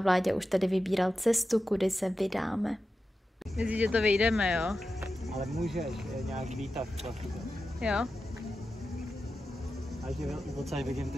už tady vybíral cestu, kudy se vydáme. Myslíš, že to vyjdeme, jo? Ale můžeš, je nějak výtah. Jo? A že odsaď vidím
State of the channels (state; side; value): normal; both; correlation 0.92